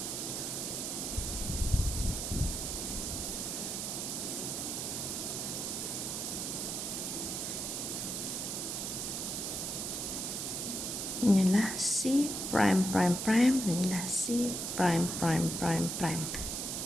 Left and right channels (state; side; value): noise; right; hiss, 3 dB below the sound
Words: Inilah C prime prime prime, dan inilah C prime prime prime prime.